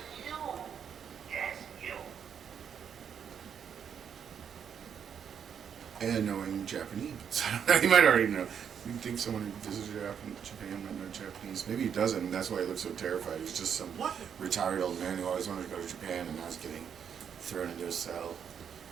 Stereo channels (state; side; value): quieter; left; 7.8 dB